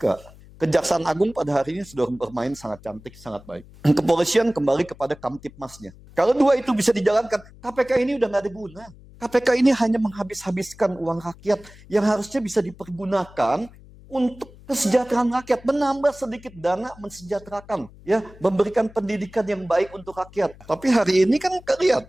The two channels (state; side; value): noise; left; hum, 22 dB below the sound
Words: Kejaksaan Agung pada hari ini sudah bermain sangat cantik, sangat baik. Kepolisian kembali kepada Kamtipmasnya. Kalau dua itu bisa dijalankan, KPK ini udah nggak ada guna. KPK ini hanya menghabis-habiskan uang rakyat yang harusnya bisa dipergunakan untuk kesejahteraan rakyat, menambah sedikit dana mensejahterakan, ya, memberikan pendidikan yang baik untuk rakyat. Tapi hari ini kan lihat,